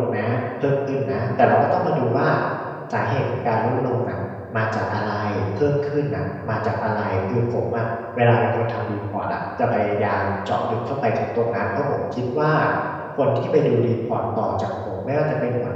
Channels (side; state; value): both; identical; correlation 1.00